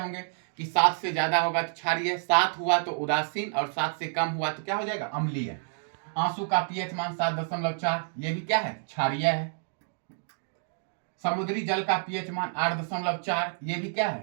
कि 7 से ज्यादा होगा तो क्षारीय, 7 हुआ तो उदासीन, और 7 से कम हुआ तो क्या हो जाएगा? अम्लीय। आंसू का पीएच मान 7.4, ये भी क्या है? क्षारीय है। समुद्री जल का पीएच मान 8.4, ये भी क्या है?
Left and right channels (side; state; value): left; silent; digital silence